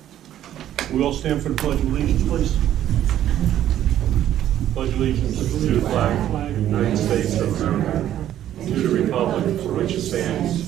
We all stand for the Pledge of Allegiance, please. Pledge allegiance to the flag of the United States of America, to the republic for which it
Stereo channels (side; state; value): left; quieter; 11.7 dB